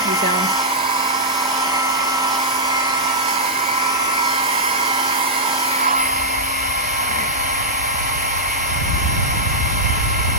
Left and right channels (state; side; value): normal; both; correlation -0.08